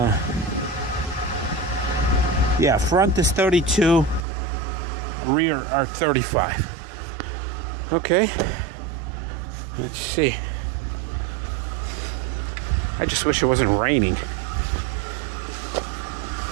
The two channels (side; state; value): left; drops out; at 4.2 s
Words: Yeah, front is 32, rear are 35. Okay. Let's see. I just wish it wasn't raining.